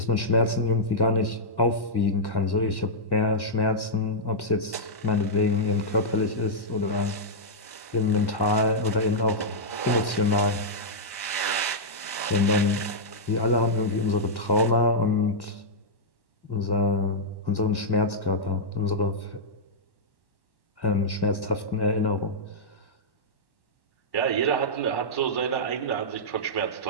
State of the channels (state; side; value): late; right; 1.1 ms